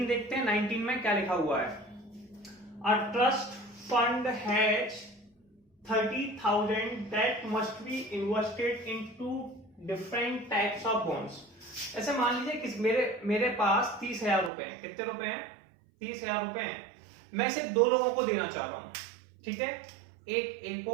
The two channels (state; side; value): drops out; left; at 14.5 s